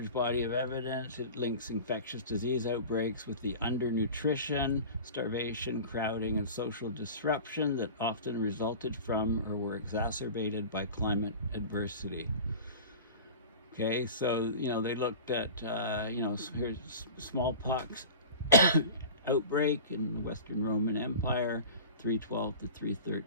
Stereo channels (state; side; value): inverted; both; correlation -0.36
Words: body of evidence, it links infectious disease outbreaks with the undernutrition, starvation, crowding, and social disruption that often resulted from or were exacerbated by climate adversity. Okay, so, they looked at, here's smallpox outbreak in the Western Roman Empire, 312 to